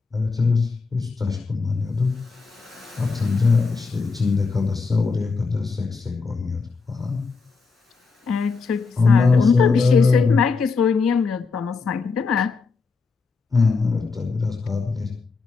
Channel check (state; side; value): quieter; right; 4.5 dB